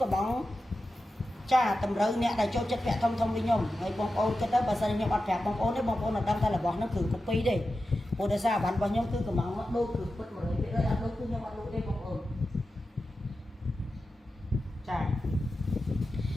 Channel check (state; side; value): normal; both; correlation 0.92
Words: bóng chả tầm rơi nè đại cho chất bẹ thông đi nhung người bông ôn cái đó bà sao nhung ăn bẹ bông ôn đấy bông ôn là đâm ra là bóng nó cử cục pi đi ủa tại sao bạn bao nhiêu cứ cầm máu đôi cử bất mới biết ơi đôi cứ nhau bạn đôi đây bọc ổn chà